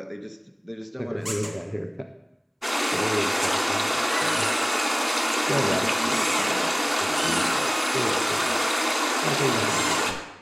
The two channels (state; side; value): identical; both; correlation 1.00